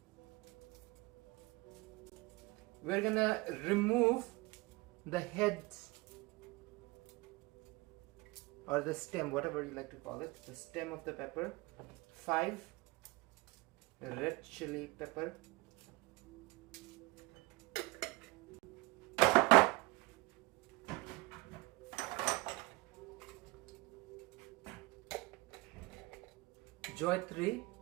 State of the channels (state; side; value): quieter; left; 22.6 dB